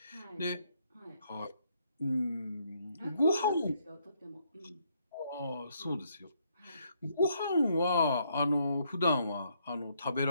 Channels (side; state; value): both; inverted; correlation -0.72